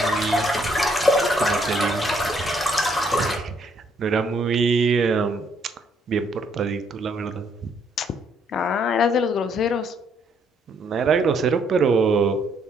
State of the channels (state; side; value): normal; both; correlation 0.69